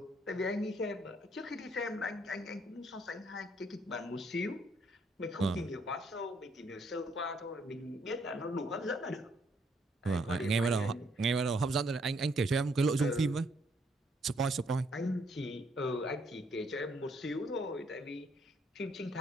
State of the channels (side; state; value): both; normal; correlation 0.70